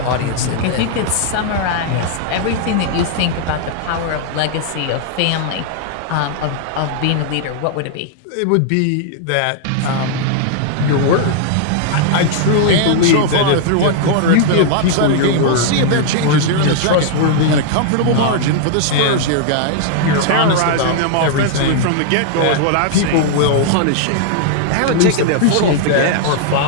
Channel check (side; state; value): both; different; correlation -0.01